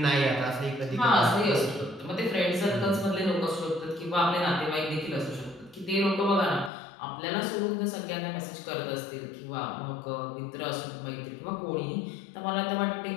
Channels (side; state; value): right; drops out; at 6.7 s